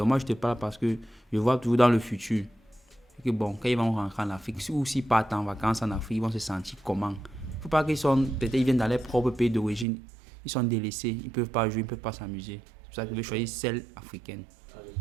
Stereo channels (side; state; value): left; drops out; at 9.9 s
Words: moi, je te parle parce que je vois toujours dans le futur que bon, quand ils vont rentrer en Afrique, ou s'ils partent en vacances en Afrique, ils vont se sentir comment? Il ne faut pas qu'ils sont, peut-être ils viennent dans leur propre pays d'origine, ils sont délaissés, ils ne peuvent pas jouer, ils ne peuvent pas s'amuser. Je veux choisir celle africaine.